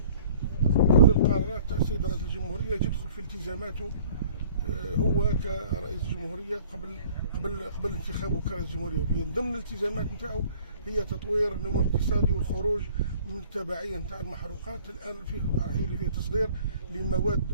كل القرارات تاع السيد رئيس الجمهوريه، يدخل في التزاماته هو كرئيس الجمهوريه قبل انتخابه كرئيس الجمهوريه. من ضمن الالتزامات نتاعو هي تطوير النمو الاقتصادي والخروج من التبعيه نتاع المحروقات. الان راح يولي فيه تصدير لمواد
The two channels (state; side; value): inverted; both; correlation -0.52